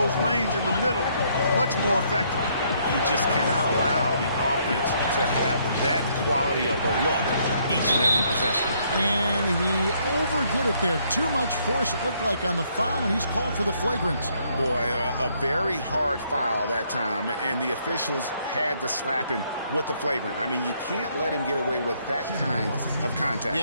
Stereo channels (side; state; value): both; inverted; correlation -0.69